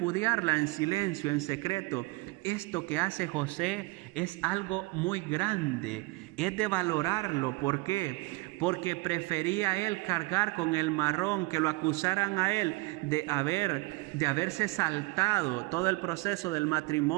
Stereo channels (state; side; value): quieter; left; 24.4 dB